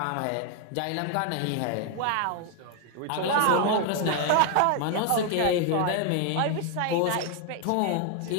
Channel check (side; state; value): both; different; correlation 0.00